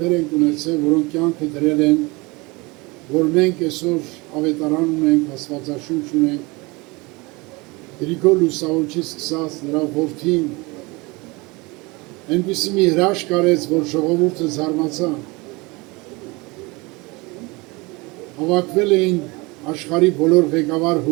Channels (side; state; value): left; quieter; 25.0 dB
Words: են ունեցել, որոնք կյանքը դրել են, որ մենք այսօր ավետարան ունենք, աստվածաշունչ ունենք, Գրիգոր Լուսավորչից սկսած նրա որդին այնպիսի մի հրաշք արեց, որ ժողովուրդը զարմացան։ Հավաքվել էին աշխարհի բոլոր ղեկավար